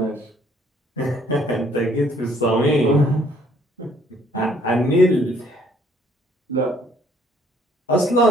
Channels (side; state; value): both; normal; correlation 0.62